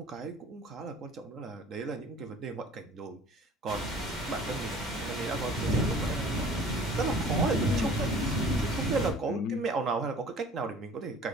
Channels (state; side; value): normal; both; correlation 0.48